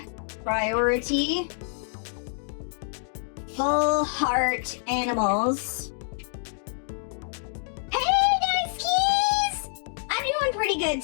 priority, full heart animals. Hey, nice keys! I'm doing pretty good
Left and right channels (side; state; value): right; silent; digital silence